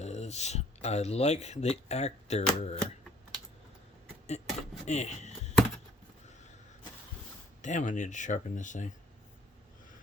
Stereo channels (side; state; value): both; normal; correlation 0.53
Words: I like the actor. Damn, I need to sharpen this thing.